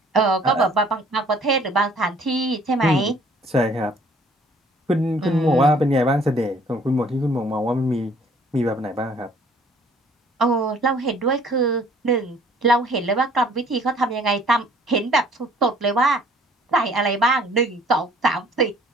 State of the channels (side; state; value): both; normal; correlation 0.57